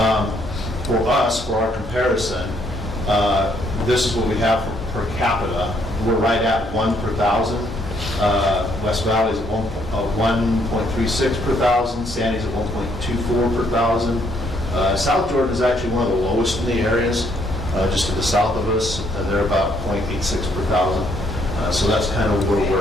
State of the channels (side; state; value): both; normal; correlation 0.70